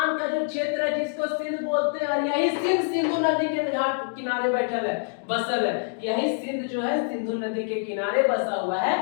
का जो क्षेत्र है जिसको सिंध बोलते हैं, और यही सिंध सिंधु नदी के घाट किनारे बैठल है, बसल है। यही सिंध जो है सिंधु नदी के किनारे बसा हुआ है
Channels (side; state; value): right; silent; digital silence